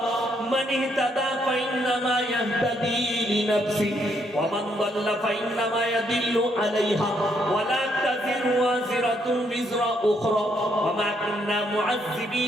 মান ইহতাদা ফাইন্নামা ইয়াহতাদি লিনাফসি ওয়া মান দাল্লা ফাইন্নামা ইয়াদিল্লু আলাইহা ওয়া লা তাযিরু ওয়াজিরাতুন বিজরা উখরা ওয়া মা কুননা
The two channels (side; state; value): both; normal; correlation 0.73